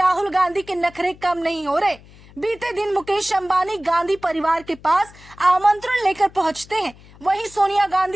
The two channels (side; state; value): left; noise; hum, 23 dB below the sound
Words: गांधी के नखरे कम नहीं हो रहे। बीते दिन मुकेश अंबानी गांधी परिवार के पास आमंत्रण लेकर पहुंचते हैं। वहीं सोनिया